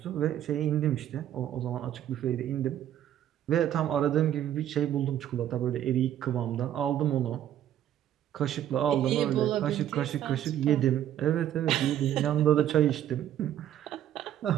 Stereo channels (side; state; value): left; quieter; 11.2 dB